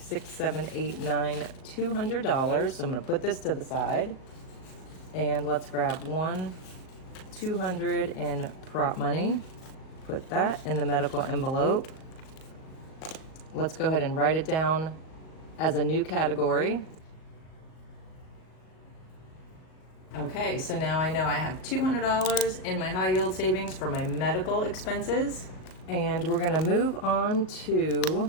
7, 8, 9, $200. So I'm going to put this to the side. And let's grab 200 in prop money. Put that in the medical envelope. Let's go ahead and write it down as a new category. Okay, so now I know I have $200 in my high yield savings for my medical expenses. And we're gonna move on to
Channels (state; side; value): late; right; 38 ms